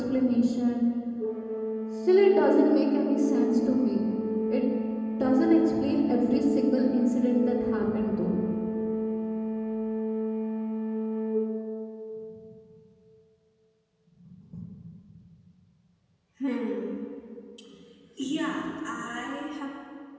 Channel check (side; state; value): both; identical; correlation 1.00